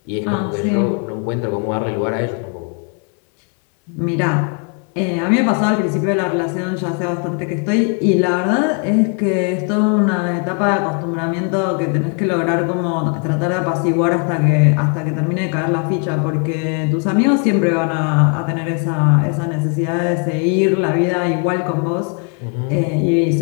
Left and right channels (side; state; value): right; quieter; 39.7 dB